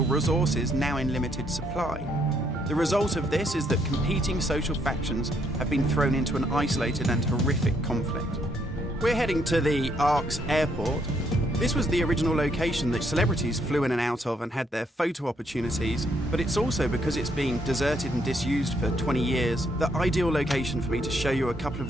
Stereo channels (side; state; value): both; normal; correlation 0.72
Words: resources now in limited supply. The result of this is that competing social factions have been thrown into an isolated and horrific conflict. We're heading to the Ark's airport. This was the original location that celebrities flew in and out of and had their photo opportunities, but it's also, because it's been deserted and disused for 20 years, the ideal location for me to show you a couple